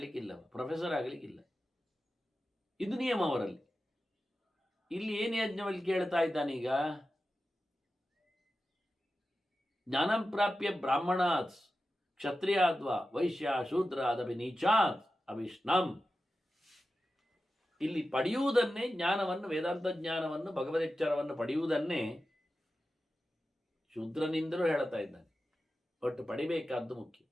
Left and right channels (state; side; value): normal; both; correlation 0.92